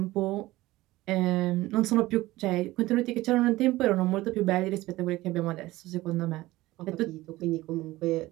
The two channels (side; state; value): left; quieter; 18.0 dB